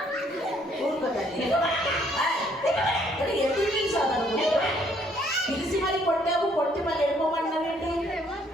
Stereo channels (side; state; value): both; normal; correlation 0.66